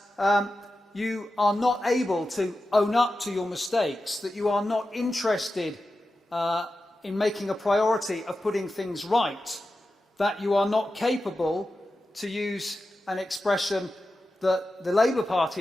you are not able to own up to your mistakes, that you are not interested in making a priority of putting things right, that you are not capable, to use an expression that the Labour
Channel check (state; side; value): normal; both; correlation 0.92